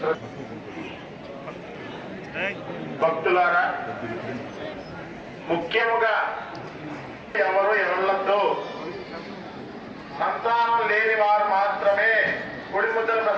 భక్తులారా, ముఖ్యముగా ఎవరు ఎవళ్ళతో సంతానం లేని వారు మాత్రమే గుడి ముద్దల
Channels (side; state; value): both; identical; correlation 1.00